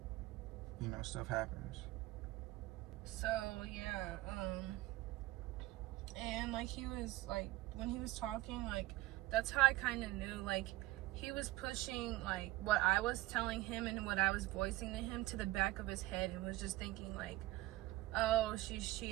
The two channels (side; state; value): left; quieter; 17.9 dB